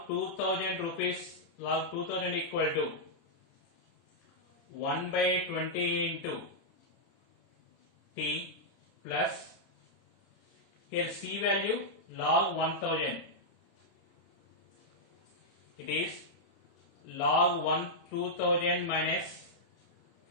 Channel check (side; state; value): right; late; 30 ms